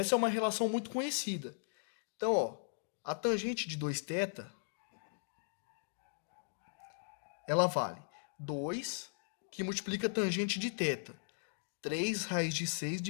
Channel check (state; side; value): silent; right; digital silence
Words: é uma relação muito conhecida. Então, ó, a tangente de 2θ, ela vale 2, que multiplica a tangente de θ. 3 raiz de 6